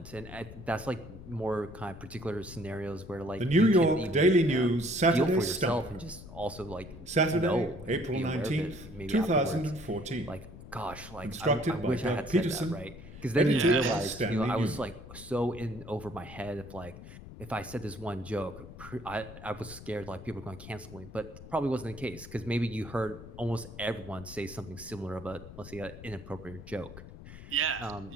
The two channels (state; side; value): noise; left; rumble, 15 dB below the sound